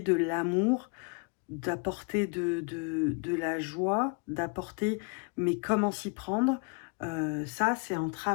l'amour, d'apporter de la joie, d'apporter, mais comment s'y prendre, ça c'est en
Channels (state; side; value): quieter; right; 33.8 dB